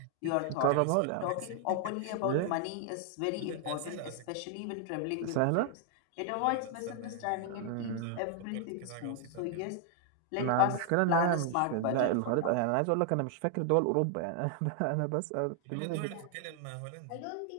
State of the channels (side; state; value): both; different; correlation 0.00